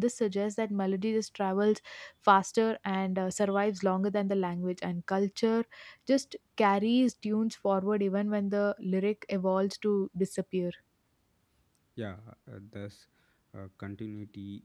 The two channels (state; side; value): identical; both; correlation 1.00